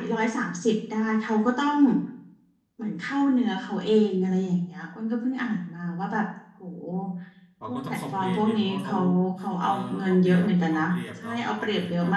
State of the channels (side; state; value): both; identical; correlation 1.00